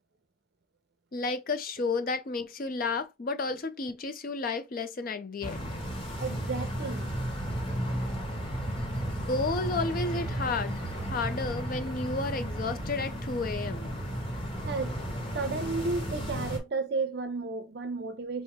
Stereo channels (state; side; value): normal; both; correlation 0.37